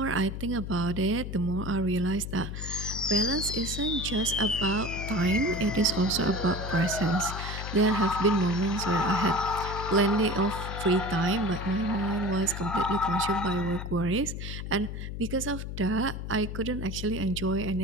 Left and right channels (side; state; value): left; noise; hum, 6 dB below the sound